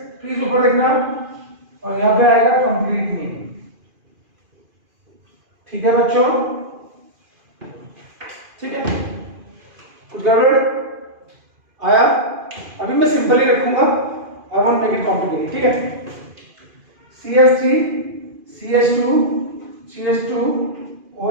प्लीज ऊपर देखना, और यहां पे आएगा कंप्लीट मीनिंग। ठीक है बच्चों, ठीक है, कुछ गड़बड़ आया? अभी मैं सिंपल ही रखूंगा, I won't make it complicated. ठीक है, CH3 CH2 CH2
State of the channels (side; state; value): left; late; 2.5 ms